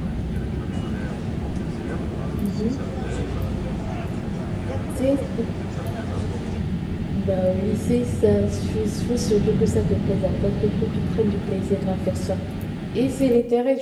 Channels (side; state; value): both; identical; correlation 1.00